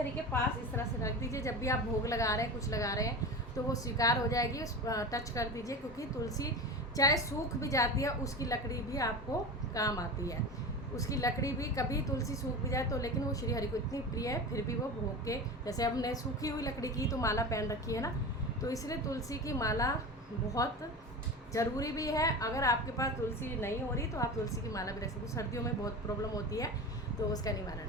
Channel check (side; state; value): both; normal; correlation 0.28